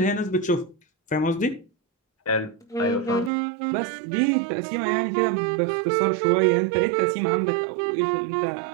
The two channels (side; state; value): left; drops out; at 3.3 s